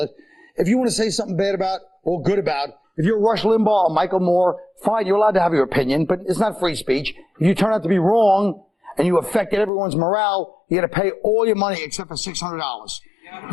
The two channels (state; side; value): drops out; right; at 9.7 s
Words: If you want to say something bad about or good about, if you're Rush Limbaugh or Michael Moore, fine, you're allowed to have your opinion, but it's not free speech. If you turn out to be wrong and you affected everyone's morale, you got to pay all your money except for $600.